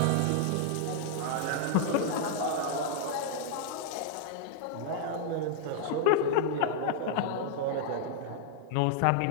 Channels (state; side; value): different; both; correlation -0.01